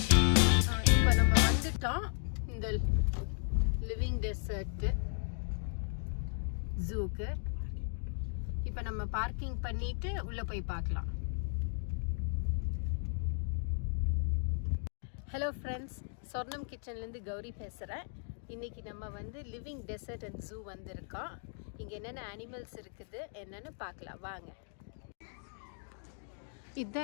இப்ப நம்ம வந்துட்டோம் இந்த லிவிங் டெசர்ட் ஜூக்கு. இப்ப நம்ம பார்க்கிங் பண்ணிட்டு உள்ள போய் பார்க்கலாம். ஹலோ ஃப்ரெண்ட்ஸ், சொர்ணம் கிச்சன்லேருந்து கௌரி பேசுகிறேன். இன்றைக்கி நம்ம வந்து லிவிங் டெசர்ட் அண்ட் ஜூ வந்திருக்கோம். இங்கே என்னென்ன அனிமல்ஸ் இருக்குது என்னென்னு பார்க்கலாம் வாங்க.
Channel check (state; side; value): silent; right; 54 dB below the other